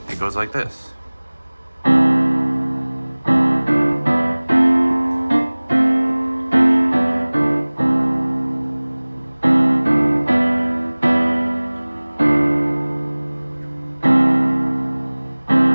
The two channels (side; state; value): both; inverted; correlation -1.00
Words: It goes like this.